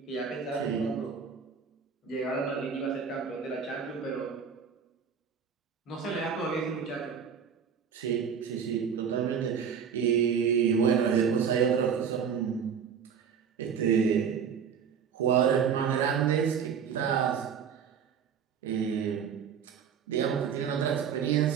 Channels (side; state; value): left; quieter; 7.1 dB